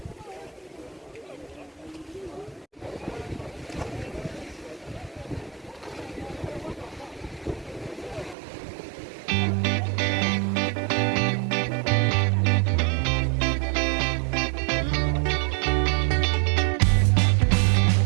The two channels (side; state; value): left; drops out; at 8.3 s